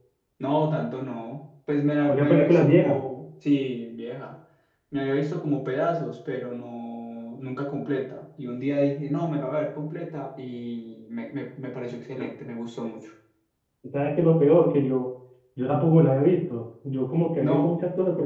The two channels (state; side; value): identical; both; correlation 1.00